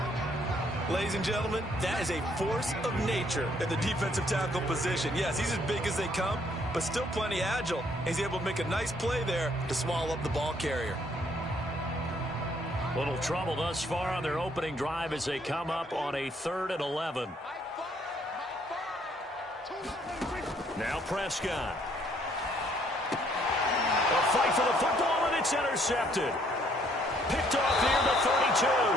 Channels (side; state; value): both; normal; correlation 0.66